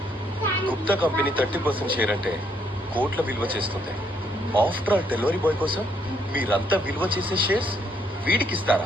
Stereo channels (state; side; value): normal; both; correlation 0.71